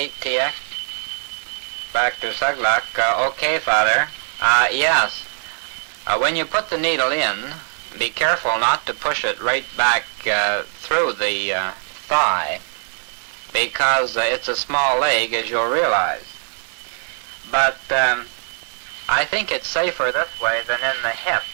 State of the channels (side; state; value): left; silent; digital silence